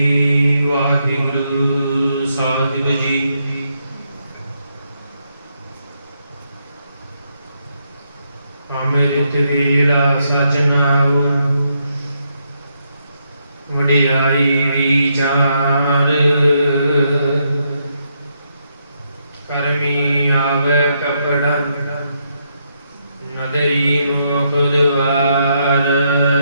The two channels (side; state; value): both; inverted; correlation -0.78